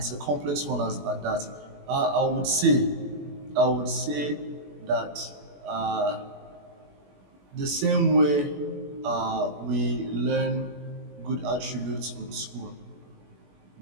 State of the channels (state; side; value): late; left; 21 ms